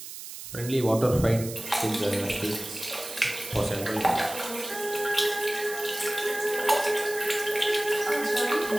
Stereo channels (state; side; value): noise; right; hiss, 11 dB below the sound